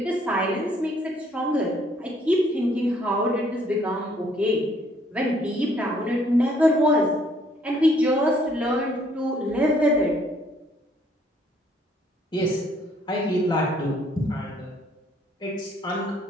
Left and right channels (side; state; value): both; normal; correlation 0.64